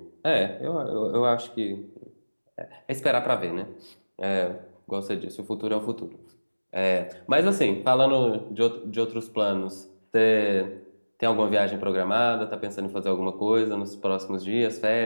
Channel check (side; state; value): both; inverted; correlation -1.00